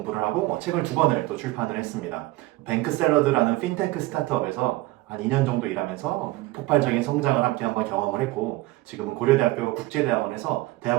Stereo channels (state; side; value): quieter; left; 19.1 dB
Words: 하고 책을 2권을 또 출판을 했습니다. 뱅크샐러드라는 핀테크 스타트업에서 한 2년 정도 일하면서 폭발적인 성장을 함께 한번 경험을 했고, 지금은 고려대학교 국제대학원에서